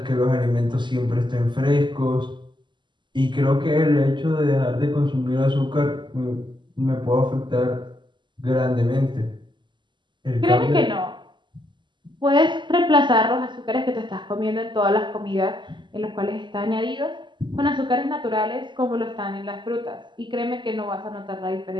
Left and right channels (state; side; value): late; left; 0.22 ms